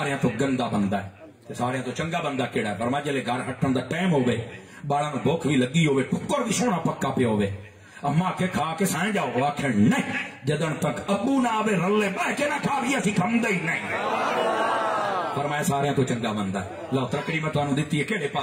تو گندا بندہ ہے تے سارے تو چنگا بندہ کیڑا ہے فرمایا جلے گھر ہٹن دا ٹائم ہوے بالاں نو بھوک بھی لگی ہوے ٹکر بھی سونا پکا پیا ہوے اما کے کھا کے سائیں جاؤ آخر نہیں جدن تک ابو نہ آوے رلے بہ کے نہ کھا بھی اسی کھمدے ہی نہیں فرمایا سارے تو چنگا بندہ ہے لو ترکڑی میں تانوں دتی ہے کیڑے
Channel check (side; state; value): both; identical; correlation 1.00